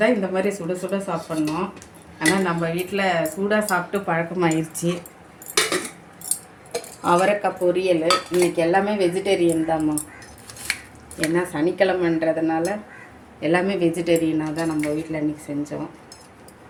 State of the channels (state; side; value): identical; both; correlation 1.00